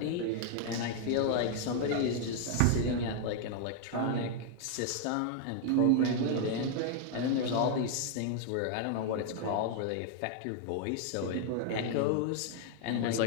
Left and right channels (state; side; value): different; both; correlation 0.00